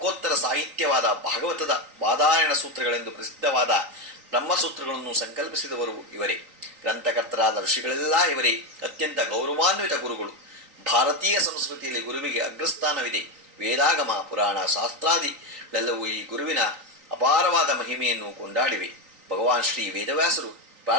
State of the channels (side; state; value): left; late; 3.9 ms